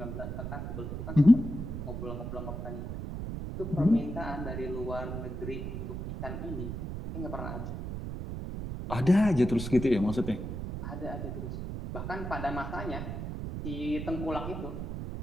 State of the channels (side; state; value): right; noise; rumble, 5 dB below the sound